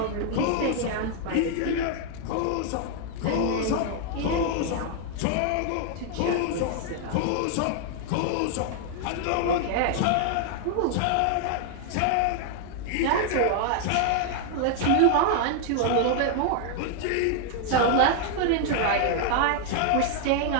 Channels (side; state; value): both; different; correlation 0.00